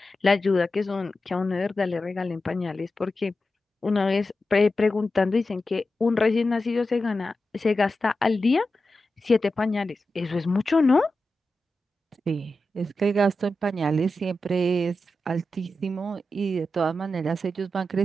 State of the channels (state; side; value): normal; both; correlation 0.91